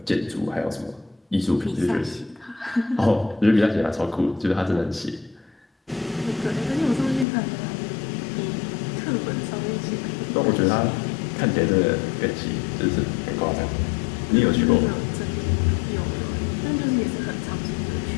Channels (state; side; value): drops out; right; at 7.2 s